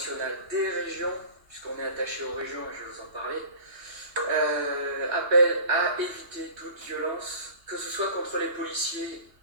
des régions, puisqu'on est attaché aux régions et je vais vous en parler, appelle à éviter toute violence, que ce soit contre les policiers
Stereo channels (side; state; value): left; late; 2.8 ms